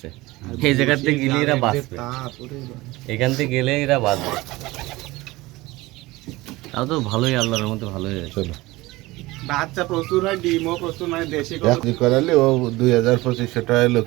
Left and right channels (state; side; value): quieter; left; 20.2 dB